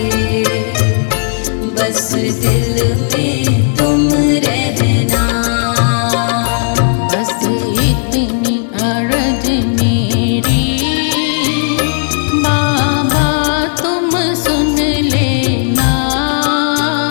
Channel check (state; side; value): silent; right; digital silence